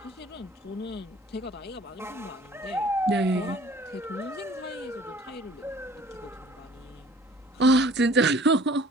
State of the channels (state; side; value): normal; both; correlation 0.51